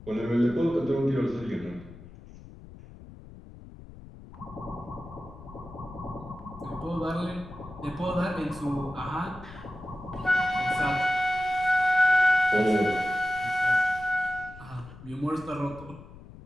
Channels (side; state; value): left; noise; rumble, 17 dB below the sound